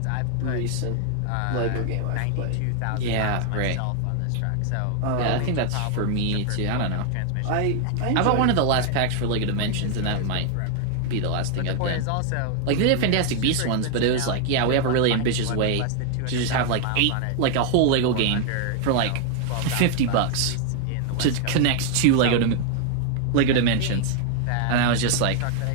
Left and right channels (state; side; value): different; both; correlation 0.00